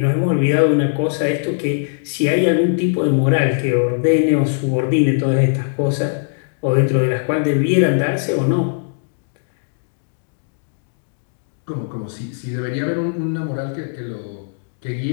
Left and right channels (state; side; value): silent; right; digital silence